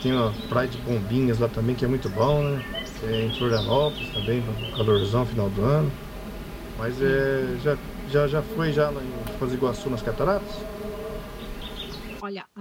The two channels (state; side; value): identical; both; correlation 1.00